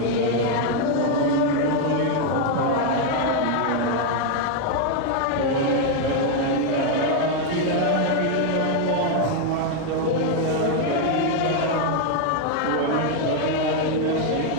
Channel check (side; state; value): both; different; correlation 0.01